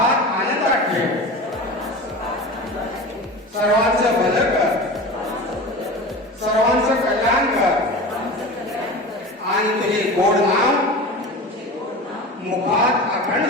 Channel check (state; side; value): normal; both; correlation 0.32